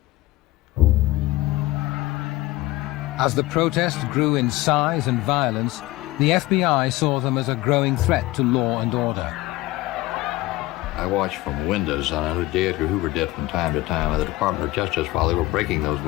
As the protest grew in size and violence, the FBI saw them as a growing threat to law and order. I watched from windows on a day Edgar Hoover did from time to time at the Department of Justice while they were breaking those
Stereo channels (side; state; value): right; quieter; 18.5 dB